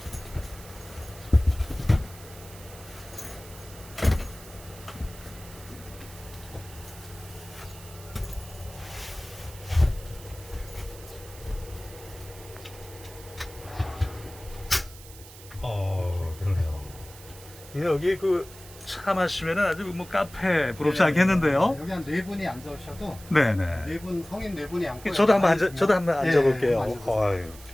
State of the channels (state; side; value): noise; right; hiss, 18 dB below the sound